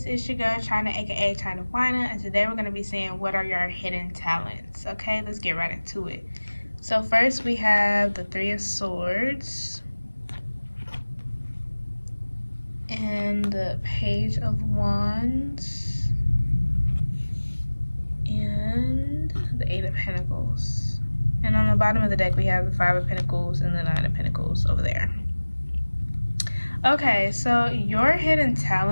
It's your girl China, aka China Wina, and today we're going to be seeing what are your hidden talents. Okay, let's get right into it. So first we have the Three of Swords and the Page of Wands and the Eight of Pentacles. And on the bottom of the deck we have the Five of Pentacles and the Nine of Pentacles over there. Okay, so your hidden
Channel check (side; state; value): both; inverted; correlation -1.00